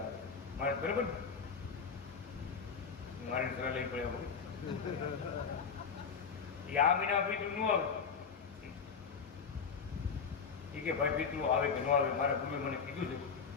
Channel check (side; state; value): right; quieter; 6.0 dB